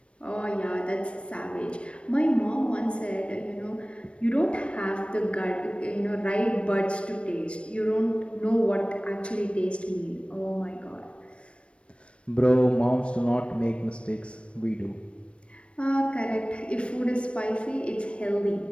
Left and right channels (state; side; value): late; right; 0.060 ms